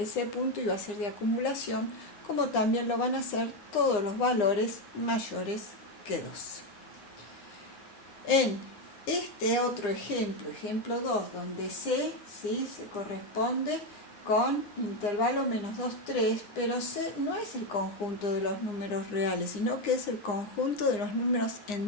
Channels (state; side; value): late; right; 9.8 ms